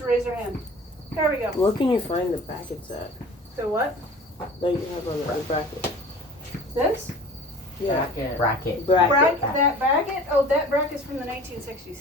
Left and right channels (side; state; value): both; normal; correlation 0.43